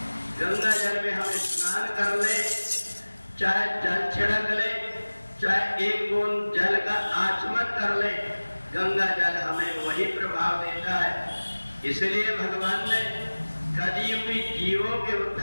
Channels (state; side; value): inverted; both; correlation -1.00